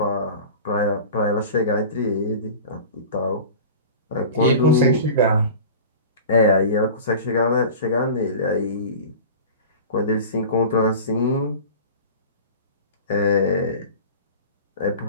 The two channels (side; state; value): both; inverted; correlation -0.37